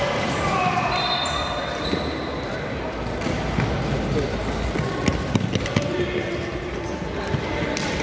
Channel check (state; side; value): identical; both; correlation 1.00